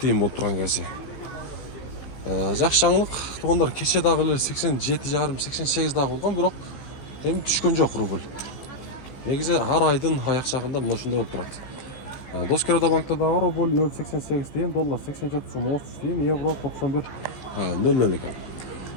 болуп турган кези. Жакшы жаңылык туугандар, кече дагы эле 87,5-88 дагы болгон, бирок эми түшкөн жок рубль. Негизи ар айдын аяк жагында мына ушундай болуп турат. Доскерода банкта дагы рубль 0,88 тыйын, доллар 87 сом 30 тыйын, евро 91,00 экен.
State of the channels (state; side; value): late; right; 15 ms